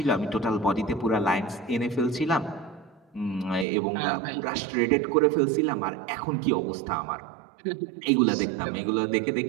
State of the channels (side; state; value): left; drops out; at 3.7 s